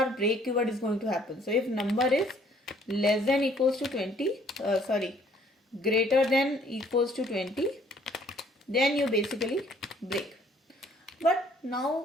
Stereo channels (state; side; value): normal; both; correlation 0.60